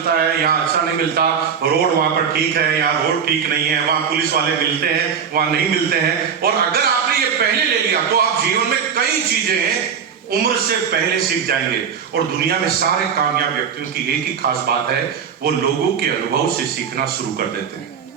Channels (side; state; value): left; quieter; 7.1 dB